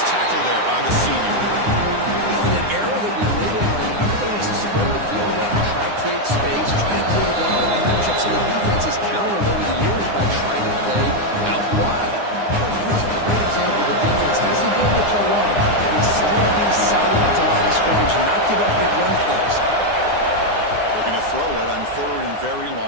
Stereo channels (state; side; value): late; left; 9.8 ms